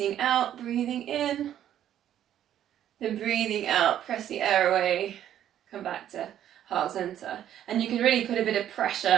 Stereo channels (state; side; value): quieter; left; 11.0 dB